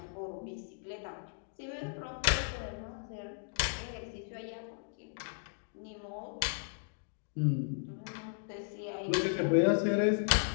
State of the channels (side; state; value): right; silent; digital silence